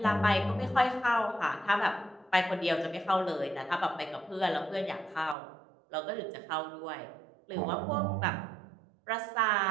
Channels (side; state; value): left; drops out; at 5.4 s